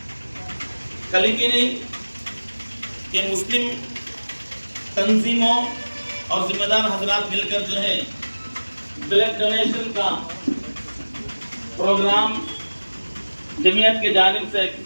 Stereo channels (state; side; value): inverted; both; correlation -1.00